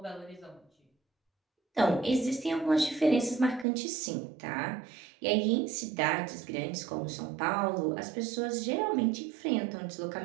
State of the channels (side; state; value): left; drops out; at 3.7 s